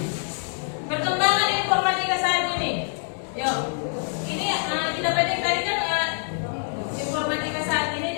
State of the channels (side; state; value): right; silent; 62 dB below the other